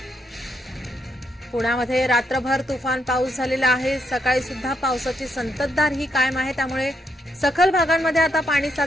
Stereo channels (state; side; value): normal; both; correlation 0.78